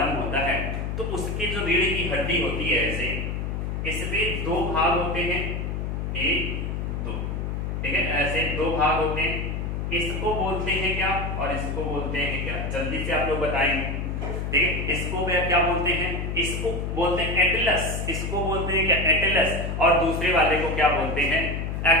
होता है। तो उसकी जो रीढ़ की हड्डी होती है, ऐसे इसमें दो भाग होते हैं, एक दो, ठीक है, ऐसे दो भाग होते हैं, इसको बोलते हैं क्या और इसको बोलते हैं क्या, जल्दी से आप लोग बताएंगे, ठीक है। इसको क्या बोलते हैं, इसको बोलते हैं एटलस, इसको बोलते हैं क्या, एटलस, और दूसरे वाले को क्या बोलते हैं,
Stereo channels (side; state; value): left; noise; hum, 3 dB below the sound